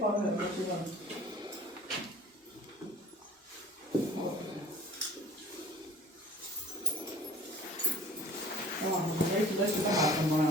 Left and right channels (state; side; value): normal; both; correlation 0.48